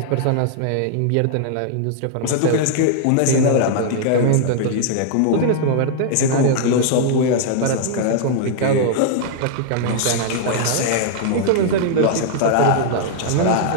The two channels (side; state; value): both; different; correlation -0.01